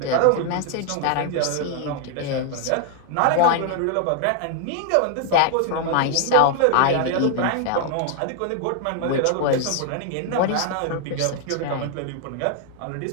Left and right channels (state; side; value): different; both; correlation 0.00